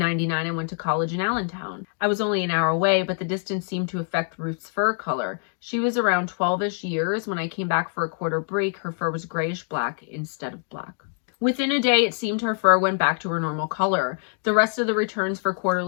I went to college in Allentown. I was only an hour away, but the distance seemed to affect Ruth's fur color. She was around 12-ish years. When I came back for a quarter break, her fur was grayish-black instead of black. Within a day, it seemed her fur went back to her normal color. The rest of the returns for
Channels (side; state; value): right; silent; 59 dB below the other